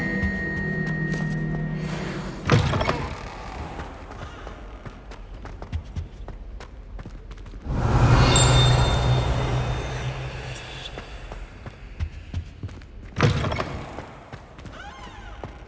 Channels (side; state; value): both; identical; correlation 1.00